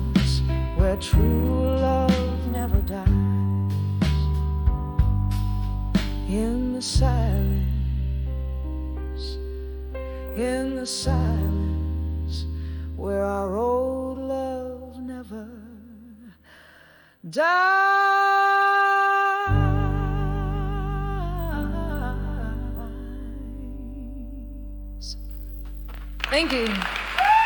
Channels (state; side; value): identical; both; correlation 1.00